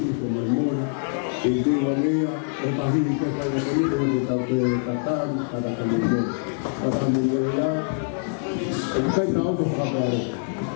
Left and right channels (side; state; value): right; silent; digital silence